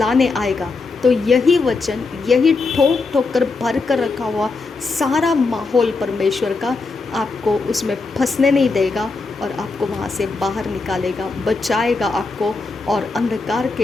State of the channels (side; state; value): right; quieter; 4.0 dB